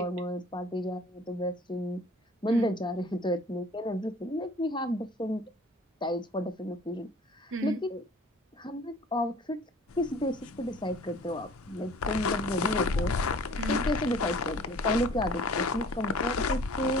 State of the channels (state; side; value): normal; both; correlation 0.50